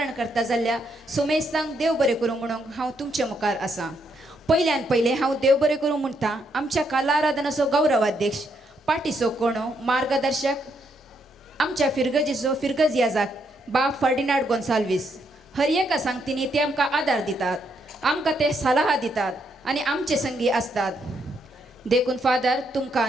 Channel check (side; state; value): both; normal; correlation 0.76